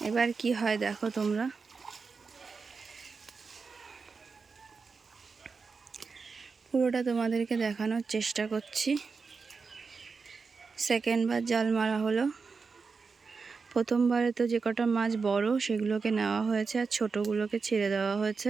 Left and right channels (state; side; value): quieter; left; 4.9 dB